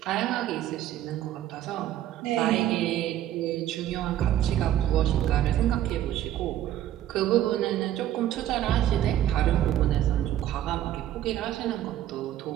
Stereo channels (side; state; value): left; quieter; 12.4 dB